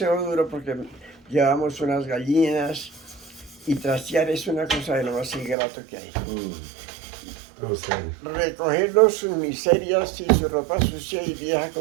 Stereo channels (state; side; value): drops out; left; at 5.6 s